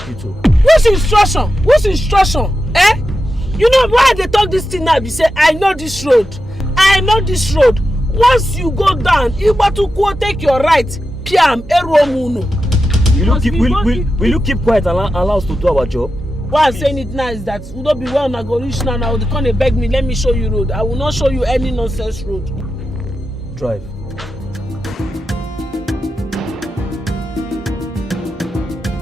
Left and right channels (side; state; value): both; normal; correlation 0.90